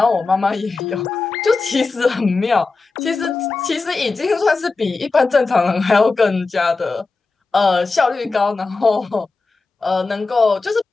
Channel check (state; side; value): quieter; right; 3.9 dB